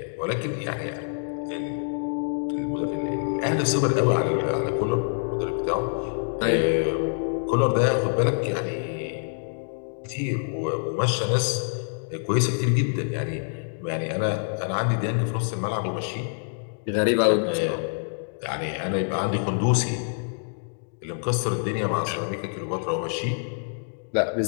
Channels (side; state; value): right; silent; digital silence